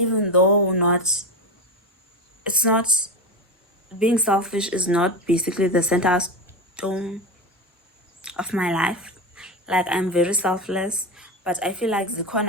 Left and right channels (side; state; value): both; normal; correlation 0.19